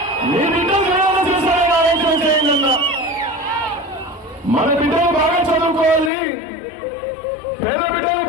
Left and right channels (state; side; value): drops out; right; at 6.1 s